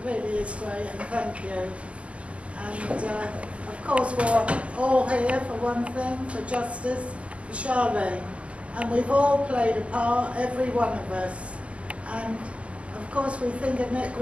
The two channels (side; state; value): left; late; 0.062 ms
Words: really is great, and thank you. And of course, we're all here for one thing, for justice, for Charlene. And we've all played a part, every one of us. And of course, we think of Nick